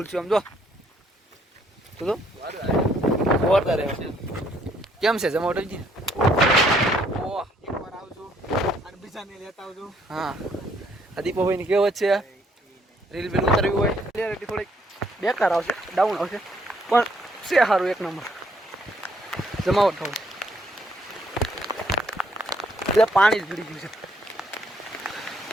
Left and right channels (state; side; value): normal; both; correlation 0.68